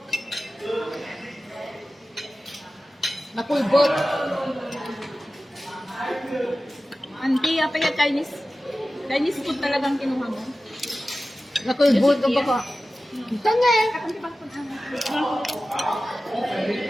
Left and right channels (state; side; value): normal; both; correlation 0.95